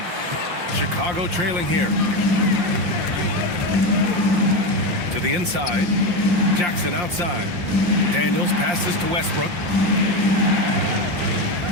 Chicago trailing here. To the inside. Jackson outside. Daniels passes to Westbrook.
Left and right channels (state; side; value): late; left; 5.7 ms